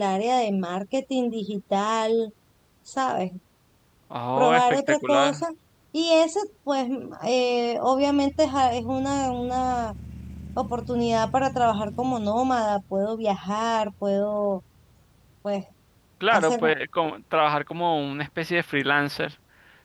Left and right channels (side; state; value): both; identical; correlation 1.00